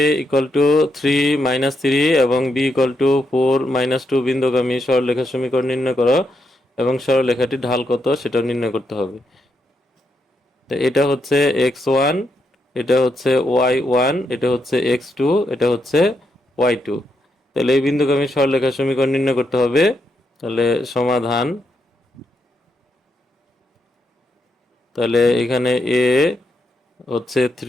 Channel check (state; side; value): normal; both; correlation 0.81